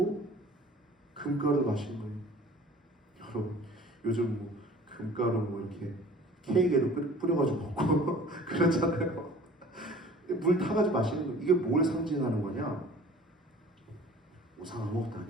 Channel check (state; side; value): normal; both; correlation 0.47